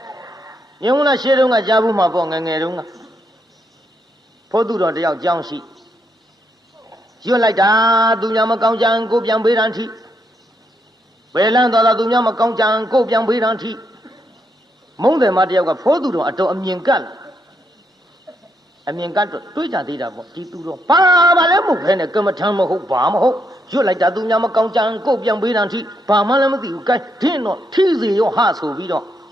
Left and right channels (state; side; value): normal; both; correlation 0.78